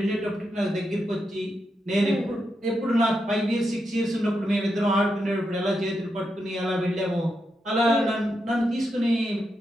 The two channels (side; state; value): both; normal; correlation 0.85